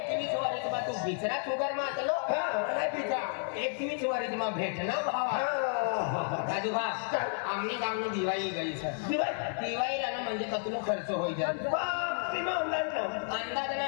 21 वरिस मा तू बिचरा शुगर मातलो नाही बिचा 21 वरिस मा भेटना भावा राजू भाऊ आमनी गावनी दिवाळी गई सर दिवाळीला ना म्हणजे कतलो खर्च होई जाय अंदाज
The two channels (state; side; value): silent; right; 57 dB below the other